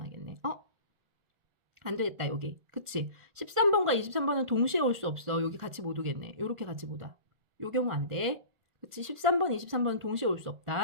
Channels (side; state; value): left; late; 1.4 ms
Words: 안 되겠다, 여기. 그치? 13번과 23번은 동시에 올 수 없어. 여기 같이 못 오겠네. 요렇게 같이 못 와. 요 경우 안 돼. 그치? 13번, 23번은 동시에 올 수